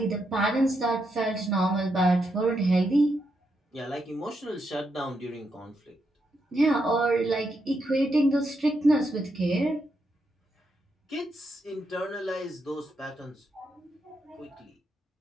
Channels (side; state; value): both; normal; correlation 0.81